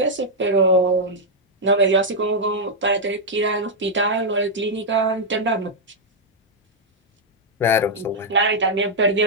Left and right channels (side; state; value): both; normal; correlation -0.04